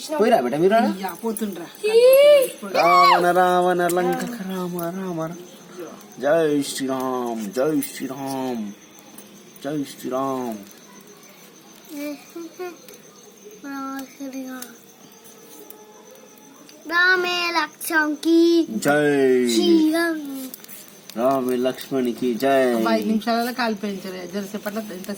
పోయిరా బేట మీరు పోతుండ్రా. రావణ రావణ లంక రామ రామ. జై శ్రీరామ్ జై శ్రీరామ్ జై శ్రీరామ్. రామే లక్ష్మణ్కి జై రామ లక్ష్మణ్కి జై. 5 నిమిషాలలో కాలిపోయించారు. జరసేపట్ల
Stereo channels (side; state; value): both; identical; correlation 1.00